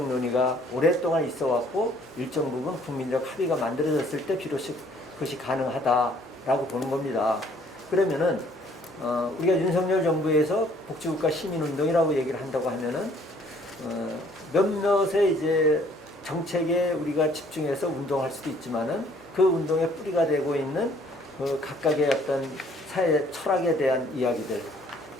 논의가 오랫동안 있어 왔고 일정 부분 국민적 합의가 만들어졌을 때 비로소 그것이 가능하다라고 보는 겁니다. 그러면은 우리가 윤석열 정부에서 복지국가 시민운동이라고 얘기를 한다고 하면은 몇몇의 이제 정책에 우리가 집중해서 운동할 수도 있지만은 그 운동의 뿌리가 되고 있는 그 각각의 어떤 사회 철학에 대한 이야기들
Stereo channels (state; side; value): normal; both; correlation 0.60